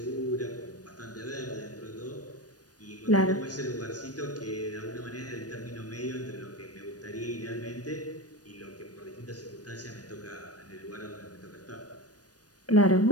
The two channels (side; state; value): right; late; 0.68 ms